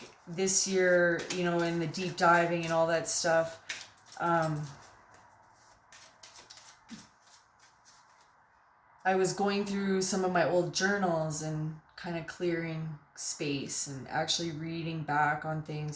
this year, in the deep diving and all that stuff, I was going through some of my old journals and kind of clearing space and actually reading back on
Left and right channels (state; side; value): identical; both; correlation 1.00